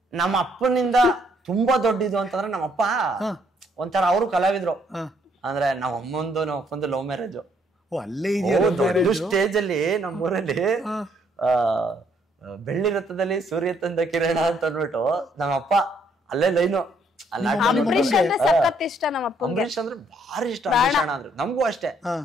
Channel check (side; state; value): both; normal; correlation 0.68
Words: ನಮ್ಮ ಅಪ್ಪನಿಂದ ತುಂಬಾ ದೊಡ್ಡದು ಅಂತಂದ್ರೆ ನಮ್ಮಪ್ಪ ಒಂಥರ ಅವರು ಕಲಾವಿದ್ರು. ಅಂದ್ರೆ ನಮ್ಮ ಅಪ್ಪಂದು ಲವ್ ಮ್ಯಾರೇಜ್. ಅಲ್ಲೇ ದೊಡ್ಡ ಸ್ಟೇಜ್ ಅಲ್ಲಿ ನಮ್ಮೂರಲ್ಲಿ ಬೆಳ್ಳಿ ರಥದಲ್ಲಿ ಸೂರ್ಯ ತಂದ ಕಿರಣ ಅಂತ ಅಂದ್ಬಿಟ್ಟು ನಮ್ಮಪ್ಪ ಅಲ್ಲೇ ಲೈನು. ಅಂಬರೀಷ್ ಅಂದ್ರೆ ಸಖತ್ ಇಷ್ಟ ನಮ್ಮಪ್ಪ. ಅಂಬರೀಷ್ ಅಂದ್ರೆ ಭಾರಿ ಇಷ್ಟ ಅಂಬರೀಷ್ ಅಣ್ಣ ಅಂದ್ರೆ. ನಮಗೂ ಅಷ್ಟೇ.